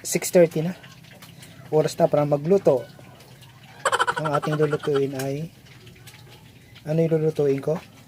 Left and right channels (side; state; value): both; identical; correlation 1.00